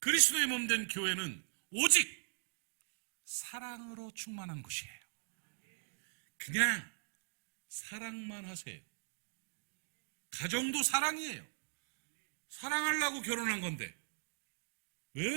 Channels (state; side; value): silent; left; digital silence